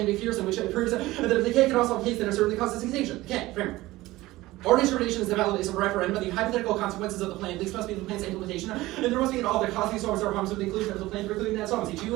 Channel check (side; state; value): left; quieter; 18.2 dB